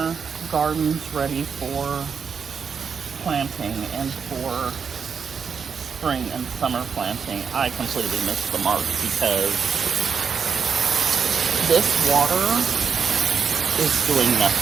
gardens ready for planting and for spring and summer planting, I completely missed the mark because this water is doing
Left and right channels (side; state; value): left; quieter; 6.3 dB